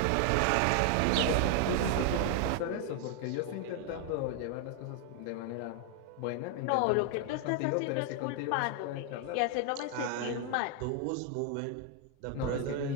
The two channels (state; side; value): different; both; correlation 0.00